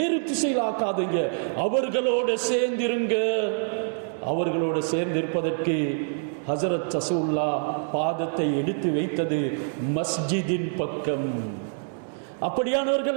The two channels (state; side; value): silent; left; digital silence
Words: திசையில் ஆக்காதீங்க. அவர்களோடு சேர்ந்திருங்க. அவர்களோடு சேர்ந்திருப்பதற்கு ஹஜ்ரத் ரசூலுல்லாஹ் பாதத்தை எடுத்து வைத்தது மஸ்ஜிதின் பக்கம். அப்படியானவர்கள்